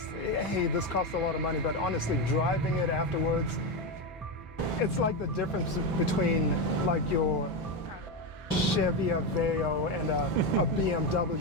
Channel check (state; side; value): normal; both; correlation 0.12